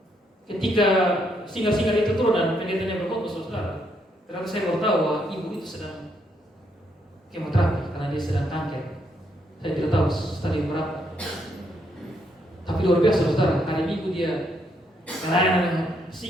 Ketika singar-singar itu turun dan pendetanya berkhotbah, saudara, ternyata saya baru tahu bahwa ibu itu sedang kemoterapi karena dia sedang kanker. Saya tidak tahu stadium berapa. Tapi luar biasa, saudara. Hari Minggu dia melayani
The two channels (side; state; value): both; normal; correlation 0.75